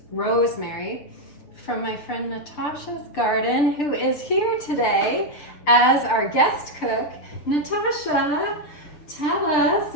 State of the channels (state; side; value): late; right; 6.8 ms